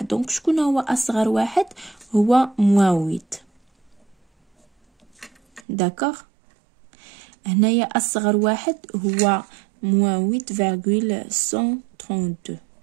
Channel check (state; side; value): drops out; left; at 5.6 s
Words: دونك شكون هو اصغر واحد؟ هو -8. داكوغ. هنايا اصغر واحد هو -8,132.